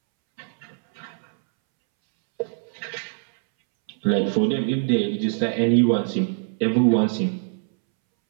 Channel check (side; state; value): left; silent; 63 dB below the other